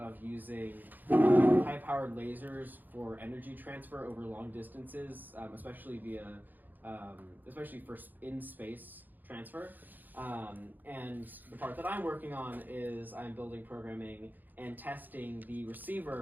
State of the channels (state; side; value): late; left; 0.086 ms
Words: using high-powered lasers for energy transfer over long distances, especially for in-space transfer. And the part that I'm working on is I'm building, programming, and testing the